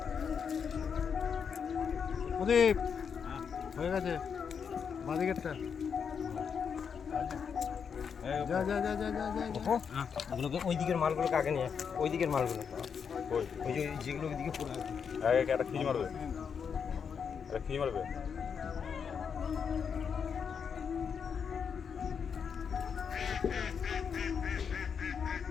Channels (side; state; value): right; quieter; 6.7 dB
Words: প্রদীপ হয়ে গেছে বাদিকেরটা যা যা যা যা যা যা ওগুলোকে ওই দিকের মালগুলোকে আগে নিয়ে ওই দিকের মালগুলো ওই যে যেগুলো ওইদিকে পড়ে আছে একটা খিজ মারবে একটা খিজ মারবে